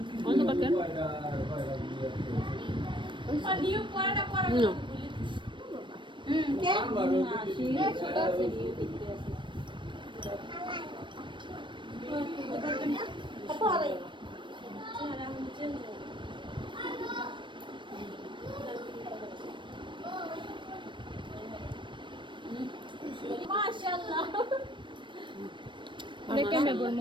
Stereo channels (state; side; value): late; left; 0.23 ms